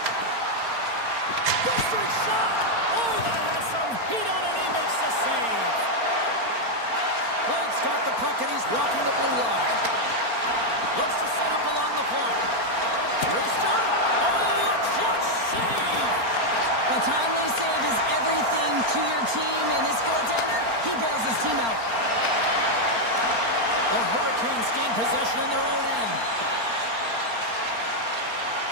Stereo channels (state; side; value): late; left; 4.3 ms